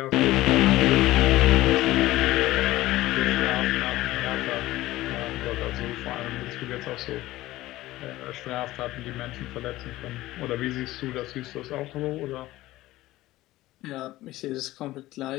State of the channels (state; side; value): quieter; right; 16.8 dB